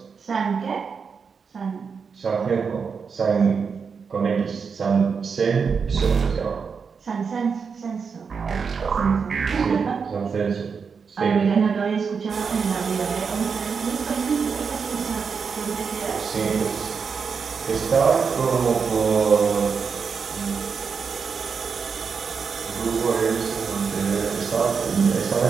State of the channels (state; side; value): quieter; left; 5.8 dB